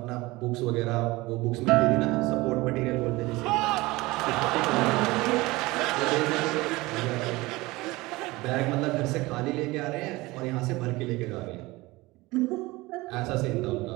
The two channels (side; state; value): left; quieter; 21.1 dB